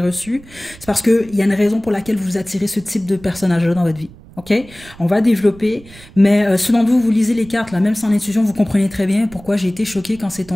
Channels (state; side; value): noise; right; rumble, 21 dB below the sound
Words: reçu. C'est parce qu'il y a une raison pour laquelle vous attirez ce type de personnage-là dans votre vie. Ok, on va développer, mais ce dont vous lisez les cartes, là, même sans intuition, vous comprenez très bien pourquoi j'ai été choquée quand